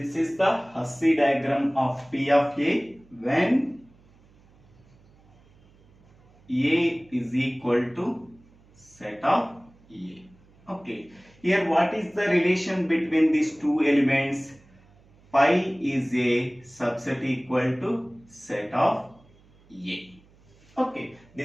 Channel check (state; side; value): noise; right; hum, 29 dB below the sound